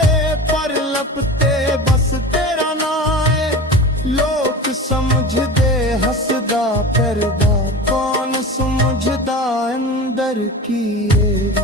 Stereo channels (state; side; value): normal; both; correlation 0.33